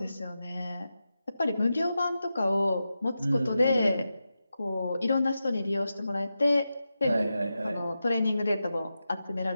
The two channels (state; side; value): inverted; both; correlation -0.90